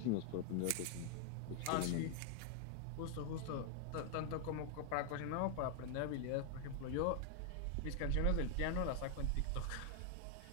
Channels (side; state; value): both; different; correlation 0.00